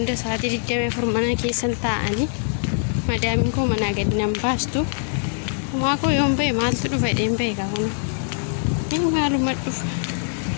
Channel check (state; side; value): silent; right; 64 dB below the other